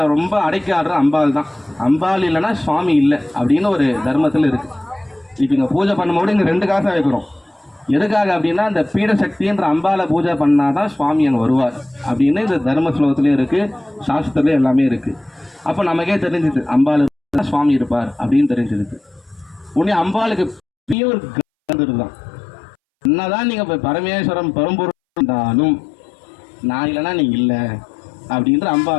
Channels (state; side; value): drops out; right; at 21.0 s